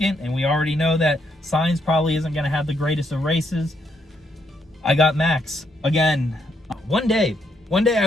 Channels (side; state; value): both; normal; correlation 0.75